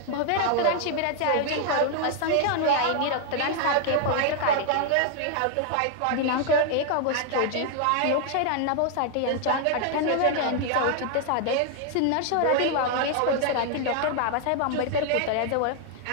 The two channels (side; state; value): both; different; correlation 0.00